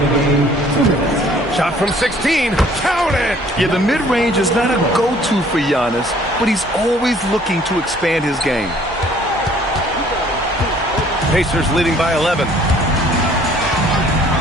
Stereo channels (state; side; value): normal; both; correlation 0.57